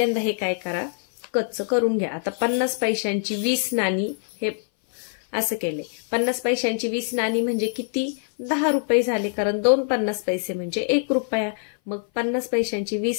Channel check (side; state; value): right; silent; 59 dB below the other